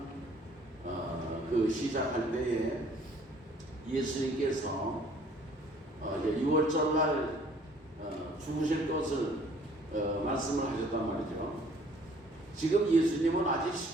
그 시작할 때에 예수님께서 이제 6월절 날 죽으실 것을 말씀을 하셨단 말이죠. 지금 예수님은 아직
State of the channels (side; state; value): both; normal; correlation 0.57